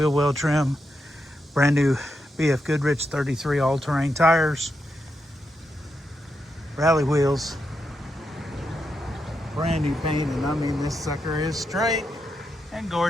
well trim, brand new BFGoodrich 33 All Terrain tires, rally wheels, brand new paint, and I mean this sucker is straight and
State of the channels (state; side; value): normal; both; correlation 0.84